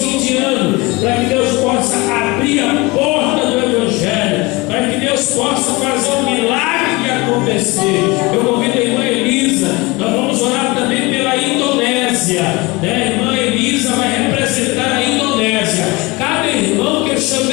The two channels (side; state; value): right; quieter; 24.1 dB